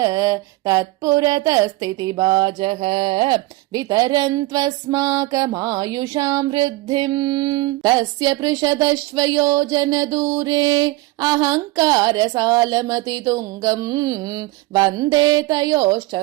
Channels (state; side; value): quieter; left; 19.9 dB